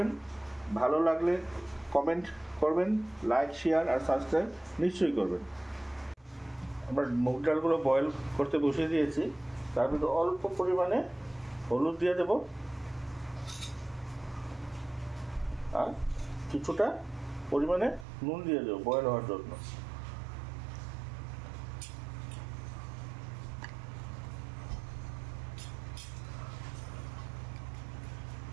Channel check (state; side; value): drops out; left; at 18.1 s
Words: ভালো লাগলে কমেন্ট করবেন, লাইক, শেয়ার আর সাবস্ক্রাইব নিশ্চয়ই করবেন। আমরা মুগ ডালগুলো বয়েল করতে বসিয়ে দিয়েছি। তার মধ্যে অল্প পরিমাণে হলুদ দিয়ে দেব, আর কিছুটা পরিমাণে নুন দিয়ে দেবো বয়েল হওয়ার জন্য।